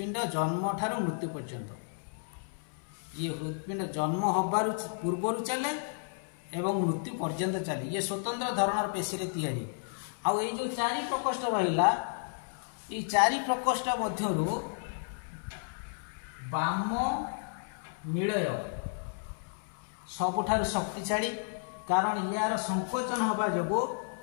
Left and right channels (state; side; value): silent; right; 56 dB below the other